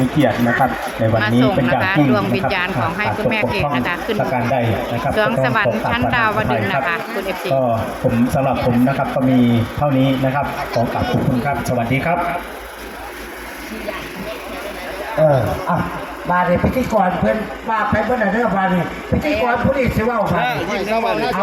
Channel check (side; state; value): both; identical; correlation 1.00